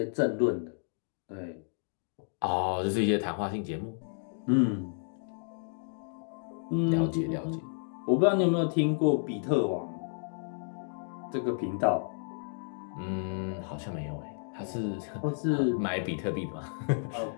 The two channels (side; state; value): right; silent; digital silence